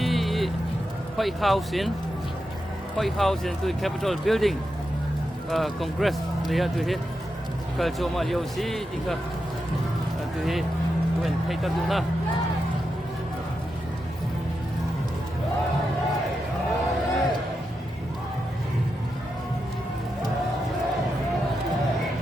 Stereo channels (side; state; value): both; normal; correlation 0.87